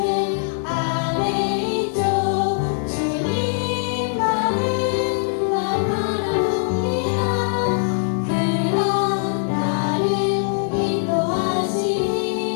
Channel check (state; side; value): silent; right; digital silence